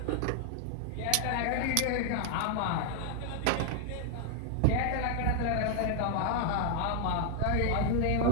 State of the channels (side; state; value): both; different; correlation 0.00